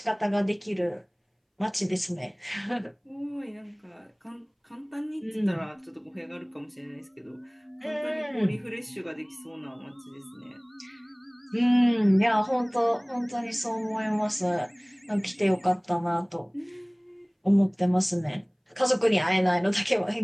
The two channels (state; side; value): identical; both; correlation 1.00